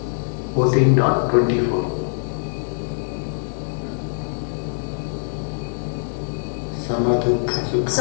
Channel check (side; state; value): right; silent; 62 dB below the other